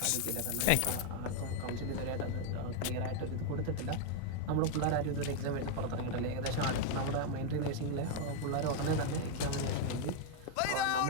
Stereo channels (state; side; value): different; both; correlation 0.00